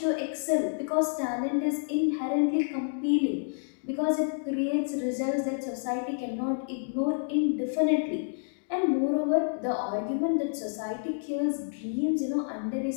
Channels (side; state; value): right; silent; digital silence